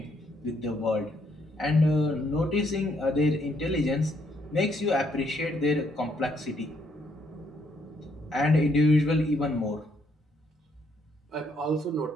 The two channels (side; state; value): both; normal; correlation 0.71